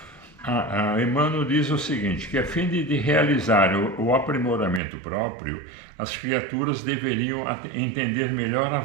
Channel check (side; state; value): left; drops out; at 4.8 s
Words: Emmanuel diz o seguinte, que a fim de realizar o aprimoramento próprio, as criaturas deveriam entender melhor a